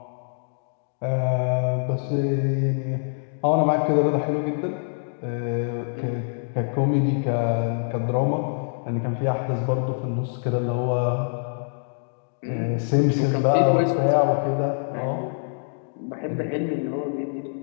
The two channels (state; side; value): silent; right; digital silence